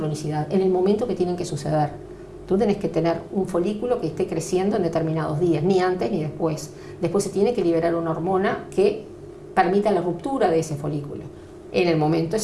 en el momento que tienen que suceder. Tú tenés que tener un folículo que esté creciendo en determinados días, ni antes ni después. Después se tiene que liberar una hormona que permita la ruptura de ese folículo en el momento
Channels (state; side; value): identical; both; correlation 1.00